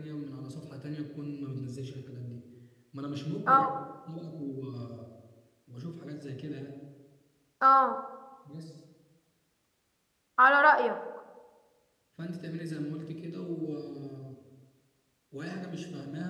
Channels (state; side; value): identical; both; correlation 1.00